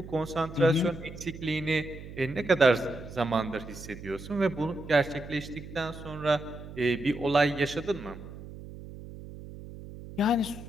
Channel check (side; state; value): right; noise; hum, 13 dB below the sound